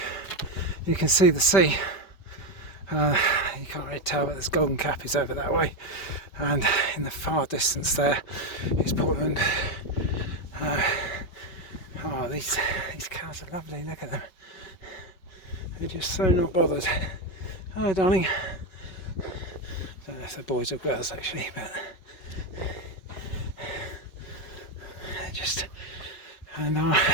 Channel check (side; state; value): right; late; 5.2 ms